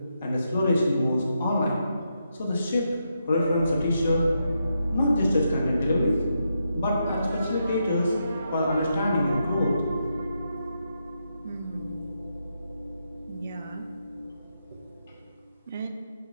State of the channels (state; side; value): inverted; both; correlation -0.83